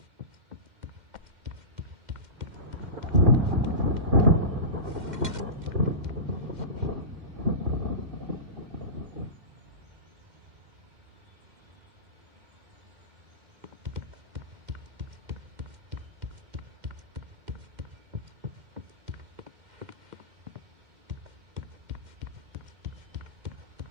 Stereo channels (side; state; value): left; late; 2.1 ms